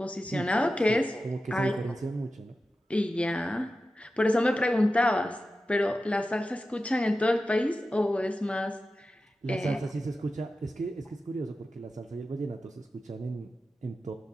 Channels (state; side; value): normal; both; correlation 0.92